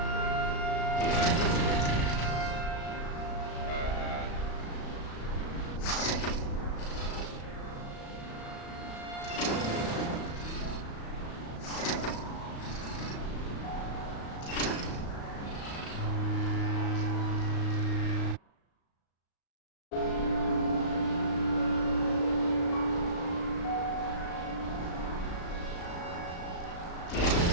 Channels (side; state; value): right; late; 35 ms